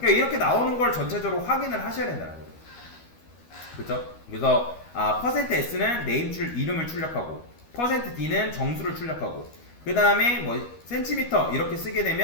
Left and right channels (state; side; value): late; right; 12 ms